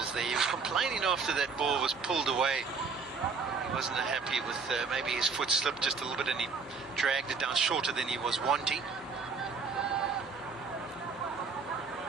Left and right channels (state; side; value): quieter; left; 5.0 dB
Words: there. He was complaining after that ball was pulled away. He wasn't happy with maybe his foot slipped just a little bit and he dragged it down shorter than he was wanting.